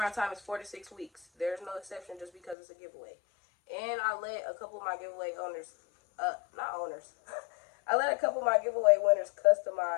time is 4 to 6 weeks. There's no exception just because it's a giveaway. And I let a couple of my giveaway owners, not owners, I let a couple of my giveaway winners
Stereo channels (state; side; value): drops out; right; at 2.6 s